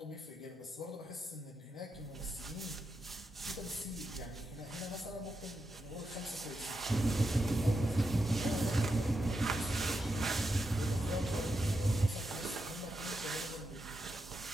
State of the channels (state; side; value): normal; both; correlation 0.86